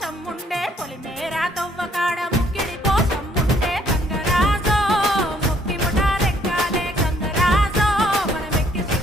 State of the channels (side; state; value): both; normal; correlation 0.65